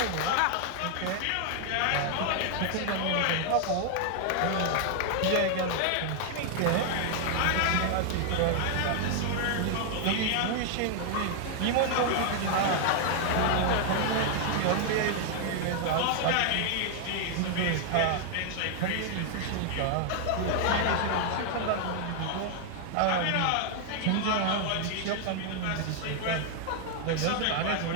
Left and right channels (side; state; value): both; different; correlation 0.00